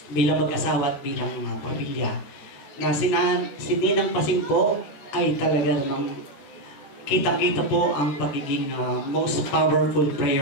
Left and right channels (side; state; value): right; late; 14 ms